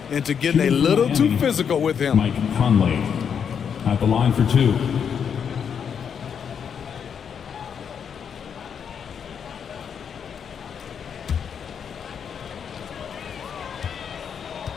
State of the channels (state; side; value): quieter; right; 7.4 dB